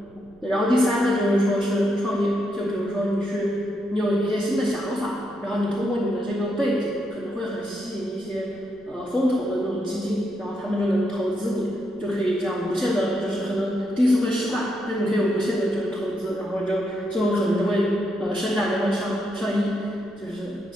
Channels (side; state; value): right; noise; rumble, 27 dB below the sound